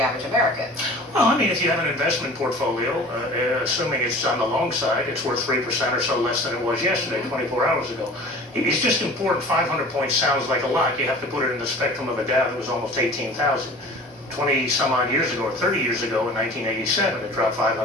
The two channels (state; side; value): normal; both; correlation 0.42